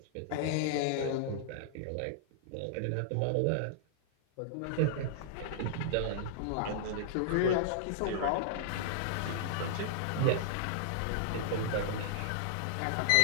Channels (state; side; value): different; both; correlation -0.01